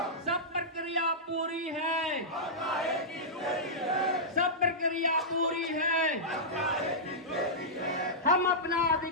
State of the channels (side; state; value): both; normal; correlation -0.13